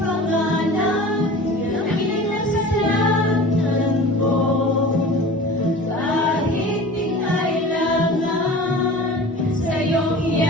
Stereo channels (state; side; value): normal; both; correlation 0.38